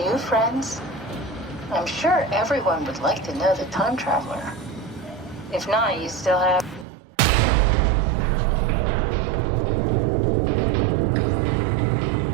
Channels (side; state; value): left; drops out; at 6.9 s